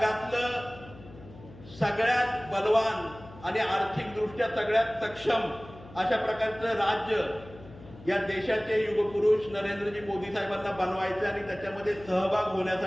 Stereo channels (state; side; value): noise; left; hum, 19 dB below the sound